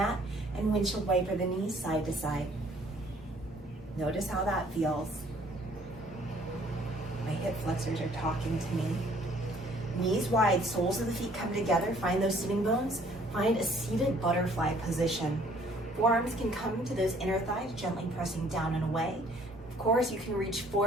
and windshield wiper the knees side to side. Notice how that feels. My hip flexors are talking to me. Knees wide, soles of the feet come together, find those sitting bones, find a seated butterfly position. Forearms can come to those inner thighs, gently pressing down and away. Of course, you can reach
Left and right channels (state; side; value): normal; both; correlation 0.59